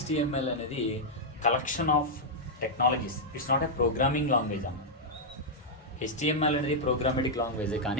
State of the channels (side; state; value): both; normal; correlation -0.05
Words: అనేది collection of technologies. It's not a programming language అన్న. HTML అనేది ప్రోగ్రామెటిక్ లాంగ్వేజ్,